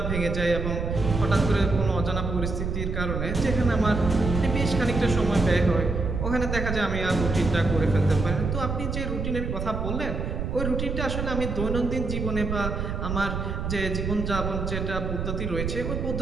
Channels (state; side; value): noise; right; rumble, 3 dB below the sound